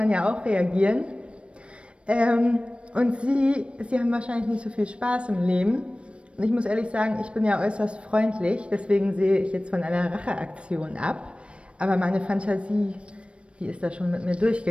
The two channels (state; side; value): late; left; 0.059 ms